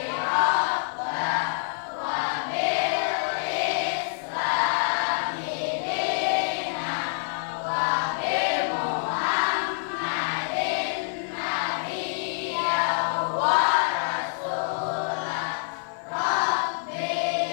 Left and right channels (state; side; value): silent; right; 60 dB below the other